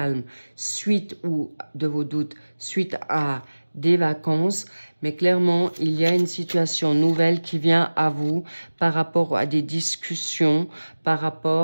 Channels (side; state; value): both; inverted; correlation -1.00